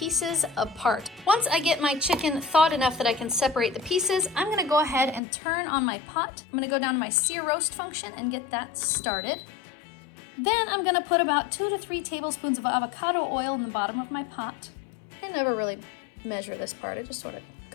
apart. Once I get my chicken thawed enough that I can separate the pieces, I'm gonna go ahead and turn on my pot. I'm gonna go down to my sear roast function and get that started. Then I'm gonna put about 2 to 3 tablespoons of avocado oil in the bottom of my pot. I never really measure this part, I just sort of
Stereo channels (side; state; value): right; drops out; at 5.2 s